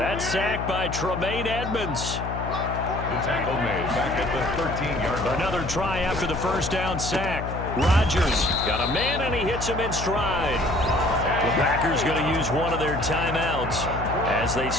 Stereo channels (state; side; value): noise; left; hum, 6 dB below the sound